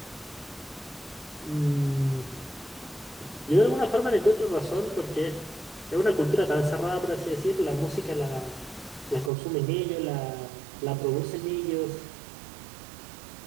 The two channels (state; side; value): drops out; left; at 9.3 s